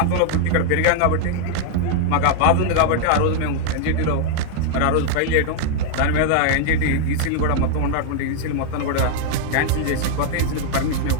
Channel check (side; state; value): both; different; correlation -0.01